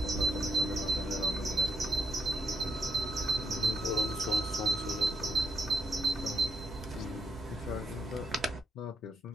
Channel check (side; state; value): both; normal; correlation 0.78